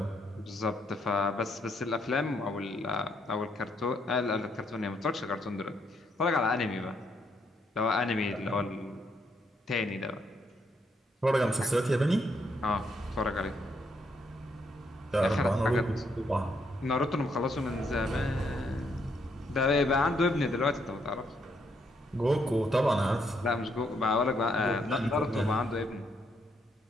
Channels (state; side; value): normal; both; correlation 0.74